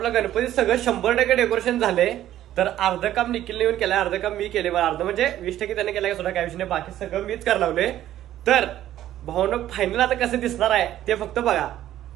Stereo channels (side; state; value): left; quieter; 12.7 dB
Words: गणपती सगळं 100% डेकोरेशन झाले. तर अर्ध काम निखिलने येऊन केलंय, अर्ध काम मी केले. अर्ध म्हणजे 20% त्याने केलंय, सुद्धा काय विषय नाही, बाकी सगळं मीच करायला लावले. तर भाऊनं फायनल आता कसं दिसणार आहे ते फक्त बघा,